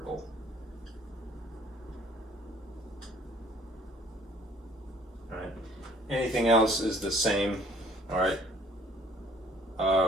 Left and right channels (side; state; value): both; normal; correlation 0.57